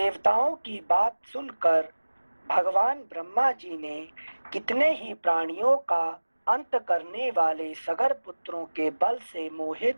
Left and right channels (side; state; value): both; inverted; correlation -1.00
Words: की बात सुनकर भगवान ब्रह्मा जी ने कितने ही प्राणियों का अंत करने वाले सगर पुत्रों के बल से मोहित